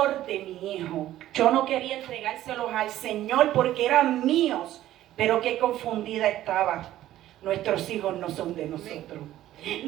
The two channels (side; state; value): left; quieter; 13.6 dB